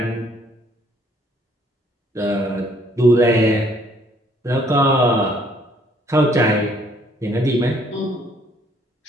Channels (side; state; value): both; normal; correlation 0.64